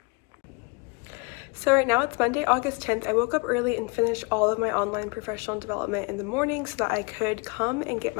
So right now it's Monday, August 10th. I woke up early and finished all of my online professional development in the morning so that I could come and get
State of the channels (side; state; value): right; quieter; 30.8 dB